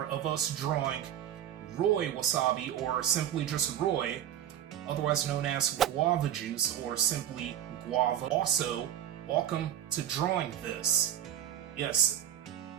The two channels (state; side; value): quieter; left; 10.7 dB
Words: of us drawing Roy Wasabi, or simply just Roy, otherwise known as guava juice, or simply guava. Also, welcome to drawing this. Yes,